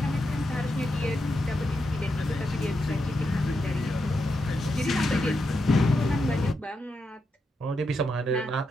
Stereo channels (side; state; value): both; normal; correlation 0.84